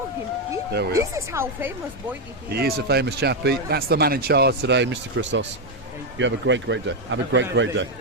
him. There we This are. is how famous boy it is. He is a famous chappie. That's the man in charge today, Mr. Christos. You have a great day. Have a great day.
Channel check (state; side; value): normal; both; correlation 0.04